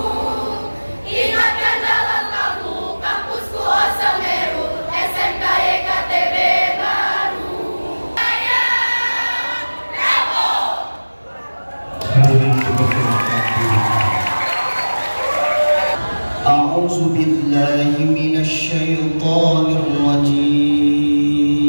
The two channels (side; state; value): both; inverted; correlation -1.00